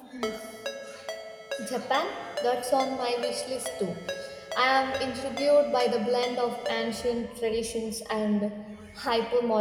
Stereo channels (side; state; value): both; identical; correlation 1.00